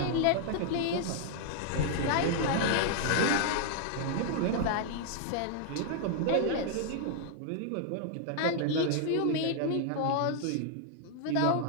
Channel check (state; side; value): different; both; correlation -0.01